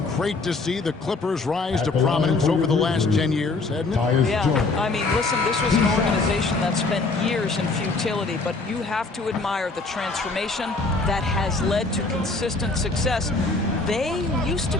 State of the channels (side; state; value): right; quieter; 3.6 dB